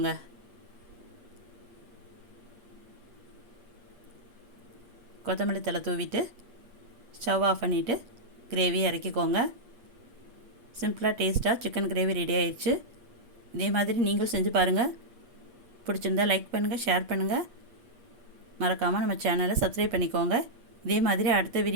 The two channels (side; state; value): left; late; 8.4 ms